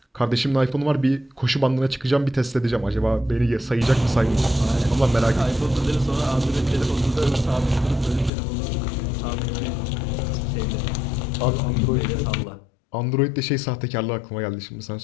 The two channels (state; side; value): drops out; right; at 8.3 s